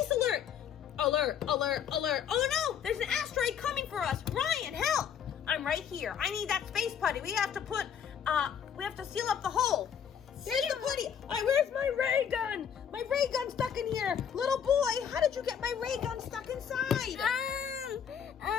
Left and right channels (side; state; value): right; quieter; 8.1 dB